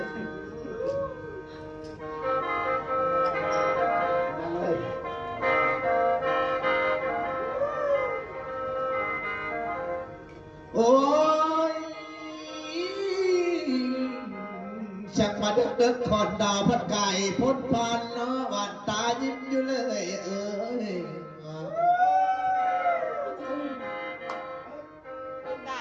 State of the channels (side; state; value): both; identical; correlation 1.00